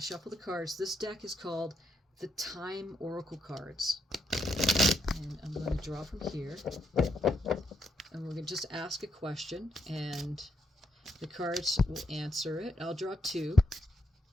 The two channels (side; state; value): both; normal; correlation 0.78